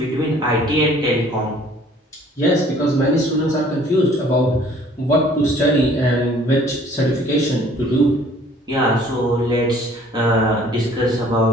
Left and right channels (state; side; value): normal; both; correlation 0.55